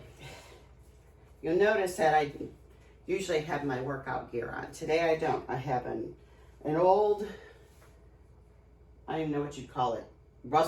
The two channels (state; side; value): identical; both; correlation 1.00